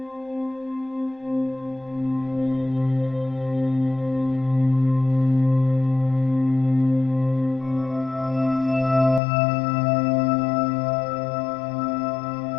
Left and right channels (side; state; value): right; drops out; at 9.2 s